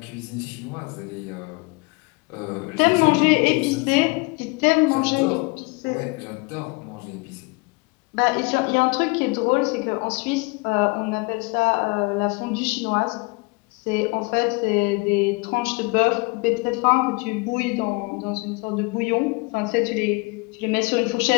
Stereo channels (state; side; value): quieter; right; 28.2 dB